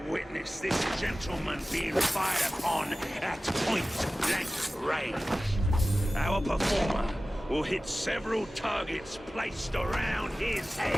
witness this gentleman being fired upon at point-blank range. Our performer will hit several targets placed around his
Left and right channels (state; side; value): normal; both; correlation 0.96